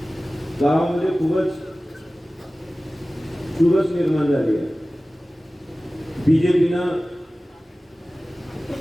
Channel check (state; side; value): normal; both; correlation 0.97